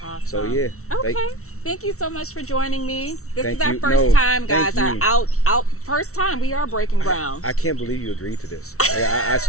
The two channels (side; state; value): right; late; 0.63 ms